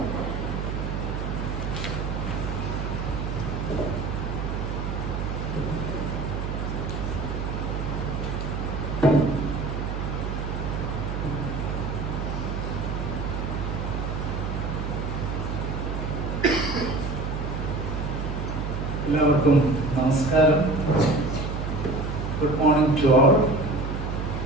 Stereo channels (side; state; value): right; noise; hum, 3 dB below the sound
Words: എല്ലാവർക്കും നമസ്കാരം. Good morning to all.